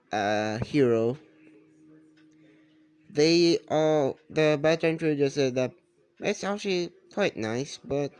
hero? The veteran crew just said that it's actually quite nice, but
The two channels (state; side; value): identical; both; correlation 1.00